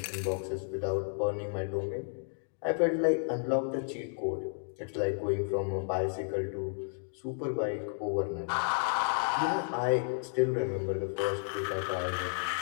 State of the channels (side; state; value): right; silent; digital silence